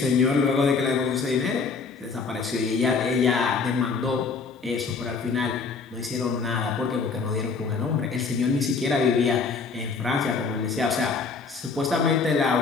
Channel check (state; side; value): quieter; right; 4.9 dB